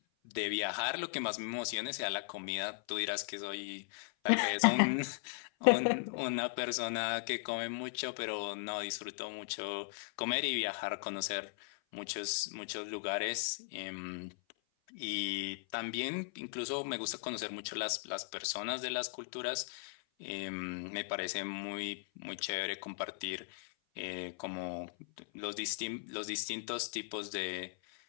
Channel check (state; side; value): silent; right; 53 dB below the other